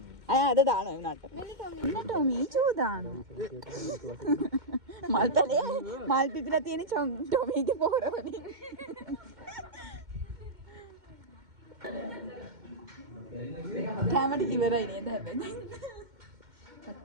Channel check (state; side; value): late; left; 2.1 ms